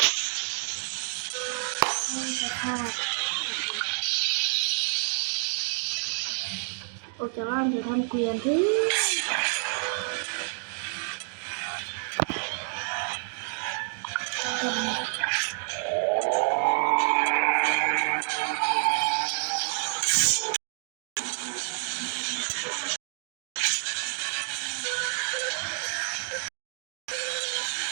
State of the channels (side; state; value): left; silent; 57 dB below the other